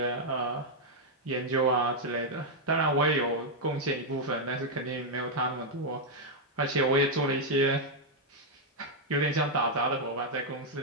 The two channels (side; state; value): both; normal; correlation -0.02